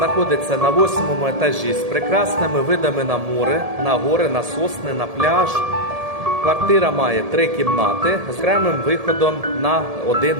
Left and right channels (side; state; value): left; late; 1.7 ms